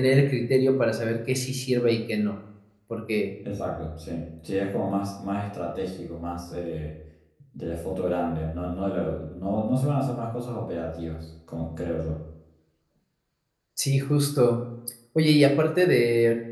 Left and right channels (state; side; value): identical; both; correlation 1.00